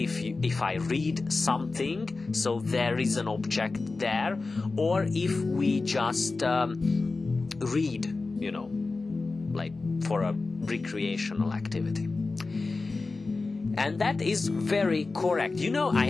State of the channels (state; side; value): quieter; right; 3.7 dB